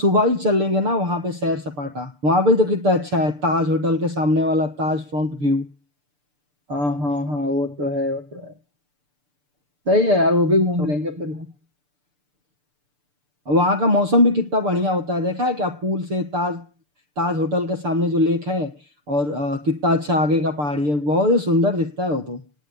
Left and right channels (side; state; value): left; late; 6.8 ms